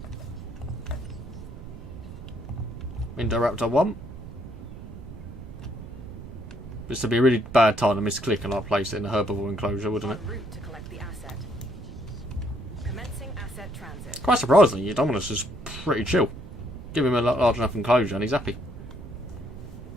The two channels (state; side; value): noise; right; rumble, 13 dB below the sound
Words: Indoraptor 1. This would be a really bad time to misclick and like place it in a herbivore enclosure, wouldn't it? En route to collect the asset. Commencing asset transit. Quite surprisingly, Dominus is pretty chill. Give him a large enough enclosure and he's happy.